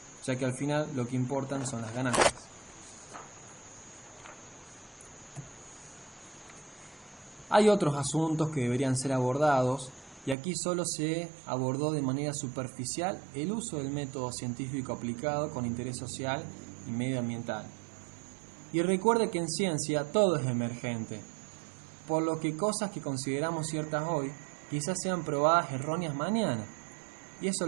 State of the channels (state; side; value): drops out; left; at 10.4 s